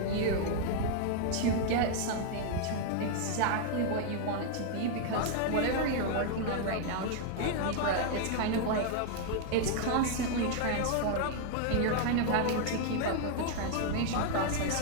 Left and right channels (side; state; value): both; different; correlation 0.00